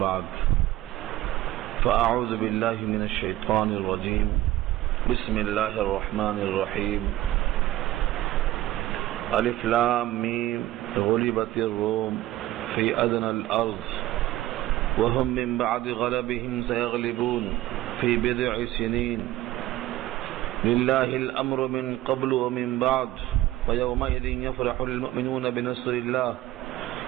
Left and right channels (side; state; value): left; quieter; 15.4 dB